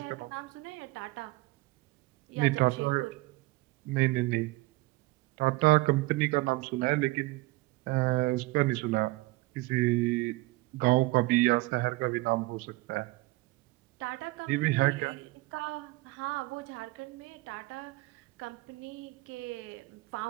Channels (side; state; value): left; quieter; 21.0 dB